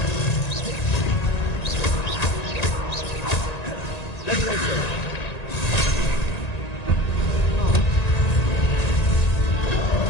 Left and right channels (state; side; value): late; right; 1.9 ms